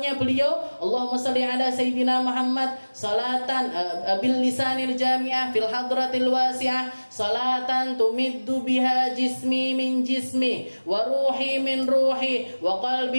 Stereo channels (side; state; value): both; inverted; correlation -1.00